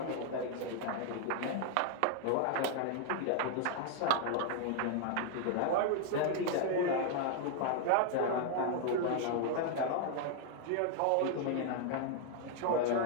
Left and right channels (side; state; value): both; different; correlation 0.00